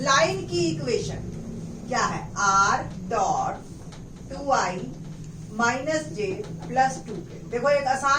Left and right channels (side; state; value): both; identical; correlation 1.00